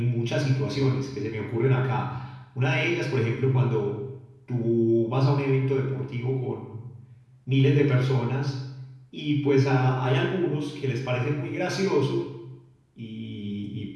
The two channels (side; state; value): both; identical; correlation 1.00